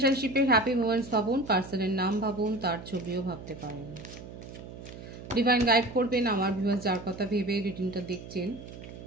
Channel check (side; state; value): right; noise; hum, 13 dB below the sound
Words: হ্যাপি মোমেন্টস ভাবুন, পার্সনের নাম ভাবুন, তার ছবিও ভাবতে পারেন। ডিভাইন গাইড করবেন আমার ভিউয়ার্স যার কথা ভেবে রিডিংটা দেখছেন,